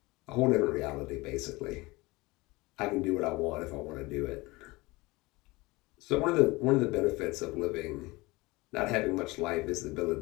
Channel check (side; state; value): right; quieter; 22.6 dB